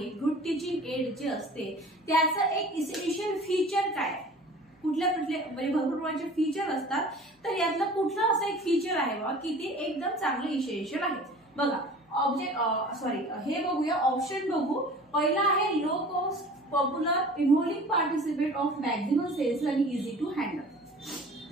गुड टीचिंग एड जे असते त्याचं एक इसेन्शियल फीचर काय? कुठल्या म्हणजे भरपूर प्रकारचे फीचर असतात, तर यातलं कुठलं असं एक फीचर आहे बा की ते एकदम चांगलं इसेन्शियल आहे? बघा हे बघूया, ऑप्शन बघू। पहिला आहे low cost, popular, involving participate of maximum sales आणि इझी टू हँडल।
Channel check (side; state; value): both; normal; correlation 0.44